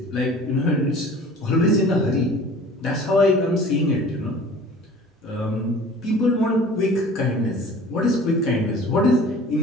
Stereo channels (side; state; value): both; normal; correlation 0.44